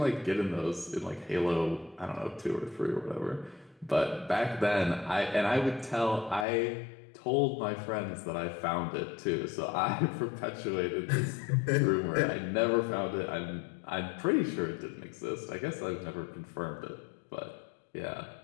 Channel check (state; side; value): drops out; right; at 6.5 s